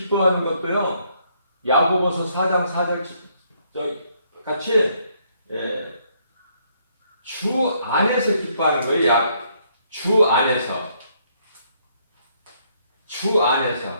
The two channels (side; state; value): both; inverted; correlation -0.70